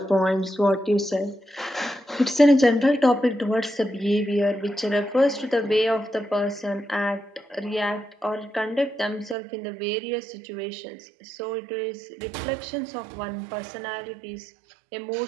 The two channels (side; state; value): left; drops out; at 9.3 s